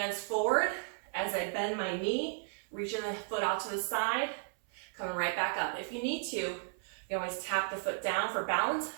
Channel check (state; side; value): silent; left; 55 dB below the other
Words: forward as I bend my knee, reaching the foot out to the side, coming right back up. If you need to, you can always tap the foot down for balance,